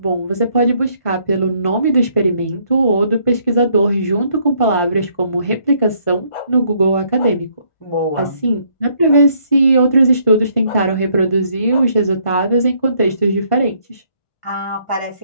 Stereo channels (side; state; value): right; late; 1.5 ms